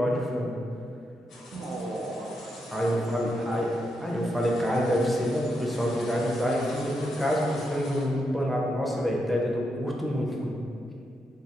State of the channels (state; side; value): normal; both; correlation 0.83